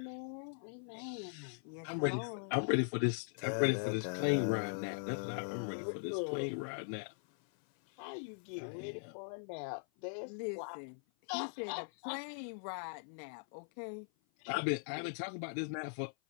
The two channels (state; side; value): silent; right; 51 dB below the other